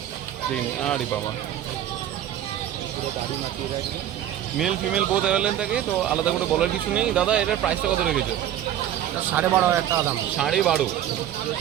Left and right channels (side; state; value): left; quieter; 11.4 dB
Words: দেখে নিন, আরে বাবা, মেল ফিমেল বোথ অ্যাভেলেবল থাকে, তো আলাদা করে বলার কিছু নেই। দাদা এটার প্রাইসটা কত রেখেছো? 12,500 টাকা দাম। 12.5।